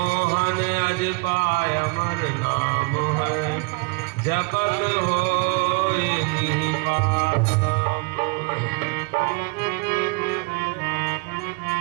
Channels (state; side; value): quieter; left; 30.7 dB